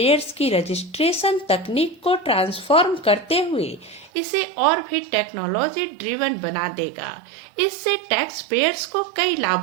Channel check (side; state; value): left; drops out; at 4.1 s